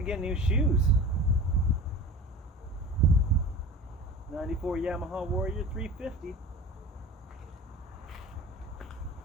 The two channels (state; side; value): normal; both; correlation 0.36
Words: get new shoes. 94 Yamaha Warrior 350.